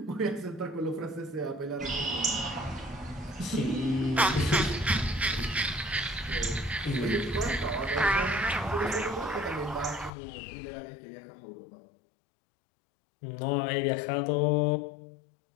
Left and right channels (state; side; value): drops out; right; at 10.1 s